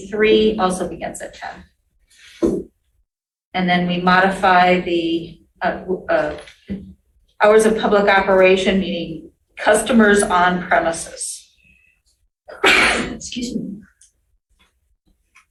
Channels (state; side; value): identical; both; correlation 1.00